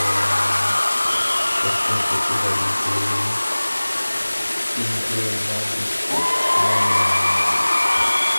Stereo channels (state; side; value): inverted; both; correlation -1.00